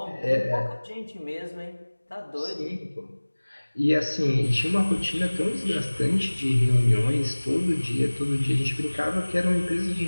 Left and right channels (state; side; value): inverted; both; correlation -1.00